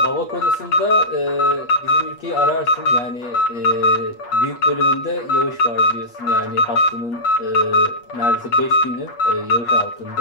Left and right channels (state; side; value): late; right; 8.4 ms